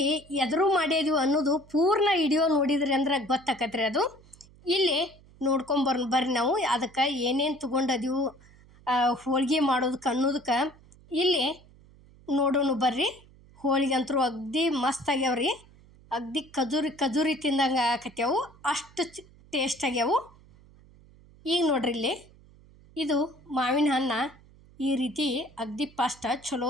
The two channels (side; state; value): right; noise; hum, 25 dB below the sound